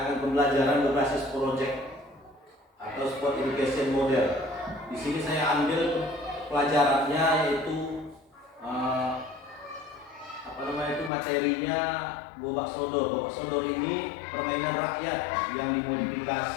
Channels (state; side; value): drops out; right; at 11.1 s